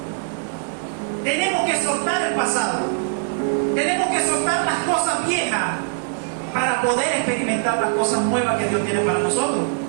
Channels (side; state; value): left; silent; digital silence